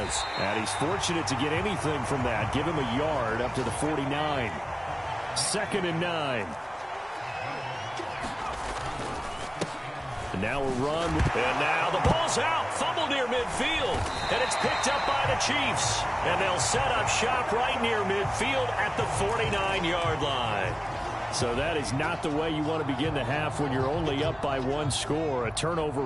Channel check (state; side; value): identical; both; correlation 1.00